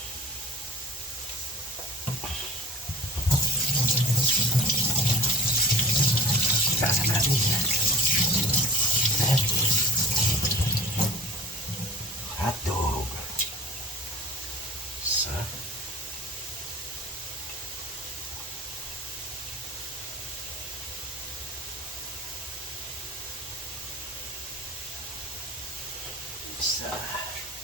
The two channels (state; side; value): normal; both; correlation 0.41